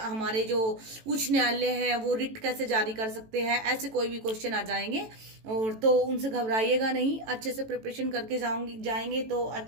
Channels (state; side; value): late; left; 18 ms